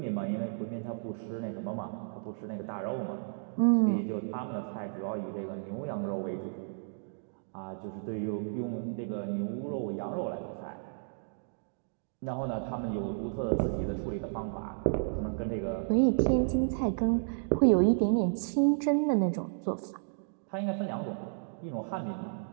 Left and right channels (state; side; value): silent; left; digital silence